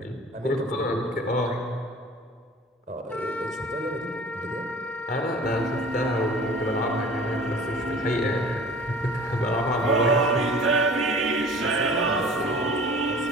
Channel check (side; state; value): both; normal; correlation 0.45